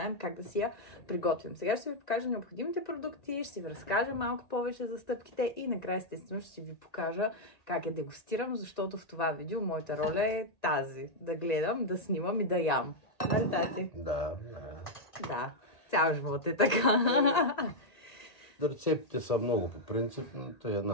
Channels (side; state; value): right; late; 1.8 ms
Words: как да си я приготвим. Сега ще ви покажа необходимите продукти, ще ви разкажа малко повече за стъпките и накрая естествено ще ви покажа как я дегустирам, защото в това видео моята роля е тази. Да гледам, да снимам и да ям. Нали, тати? Да. Да. Цял живот е така. Рецептите са много по принцип, но това е